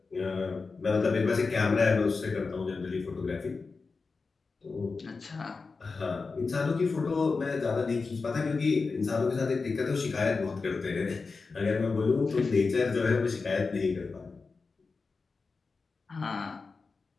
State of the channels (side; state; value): right; quieter; 4.4 dB